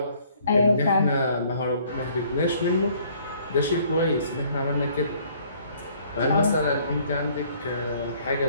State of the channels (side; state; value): both; inverted; correlation -0.60